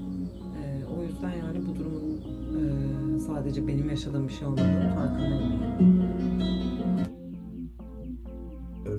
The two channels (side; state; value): both; identical; correlation 1.00